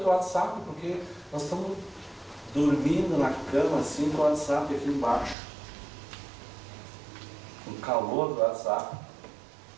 o WhatsApp, porque nós estamos dormindo na cama assim com o WhatsApp aqui embaixo, o calor do WhatsApp.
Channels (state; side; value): drops out; left; at 5.4 s